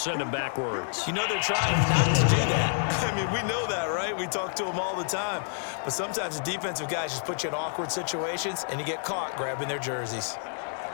him backwards. You know they're trying not to do that. I mean, we know that, right? We talk to them all the time. But sometimes the defensive guys just put you in awkward situations, and you get caught grabbing their jerseys.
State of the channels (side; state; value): right; silent; 59 dB below the other